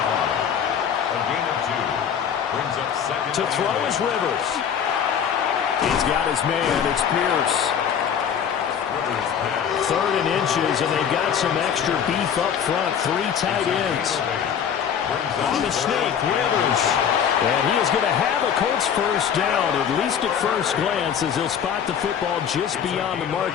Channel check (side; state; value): right; quieter; 8.1 dB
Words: A gain of 2. Brings up 2nd. To throw is Rivers. He's got his man. It's Pierce. 3rd and inches, and they've got some extra beef up front. 3 tight ends. On the sneak, Rivers. And he is going to have a Colts first down, at least at first glance, as he'll spot the football just beyond the